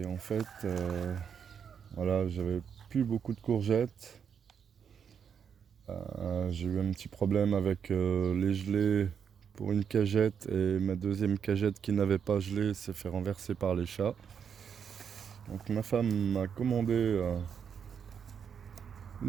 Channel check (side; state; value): left; quieter; 7.3 dB